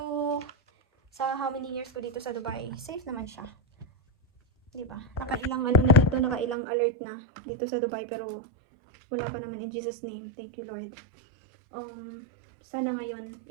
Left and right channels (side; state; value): left; drops out; at 6.6 s